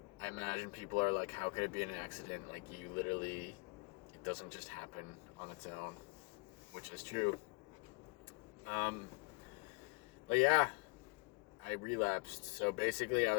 I imagine people are like, how could it be an accident? Like, you literally, it doesn't just happen on its own, which is true. Um, but yeah, I relapsed. So basically, I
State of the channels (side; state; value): right; quieter; 33.5 dB